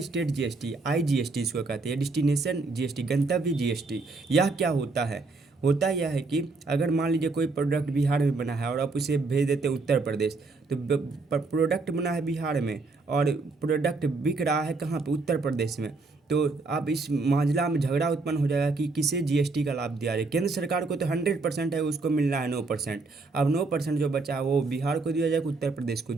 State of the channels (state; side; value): quieter; left; 3.7 dB